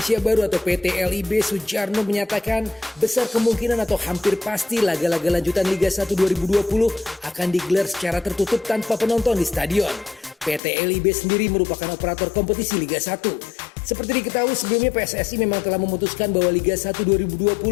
Baru atau PT LIB Sujarno menyatakan besar kemungkinan atau hampir pasti laga-laga lanjutan Liga 1 2020 akan digelar secara tertutup tanpa penonton di stadion. PT LIB sendiri merupakan operator kompetisi Liga 1. Seperti diketahui sebelumnya PSSI memang telah memutuskan bahwa Liga 1 2020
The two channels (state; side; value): drops out; right; at 10.6 s